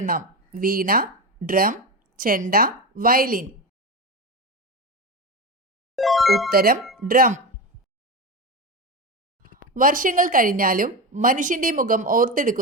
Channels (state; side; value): normal; both; correlation 0.19